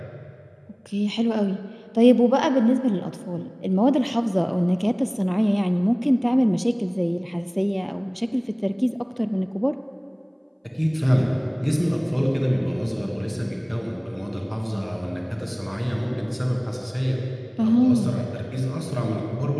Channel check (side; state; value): both; identical; correlation 1.00